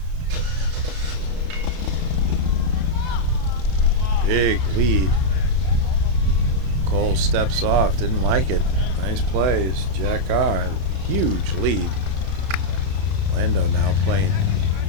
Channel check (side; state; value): left; late; 32 ms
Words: Big lead. Cole steps off, didn't like it. Nice plays. Jack R. Huge lead. Lando now playing